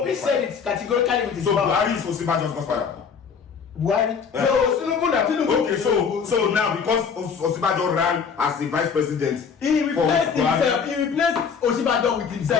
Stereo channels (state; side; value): quieter; right; 6.2 dB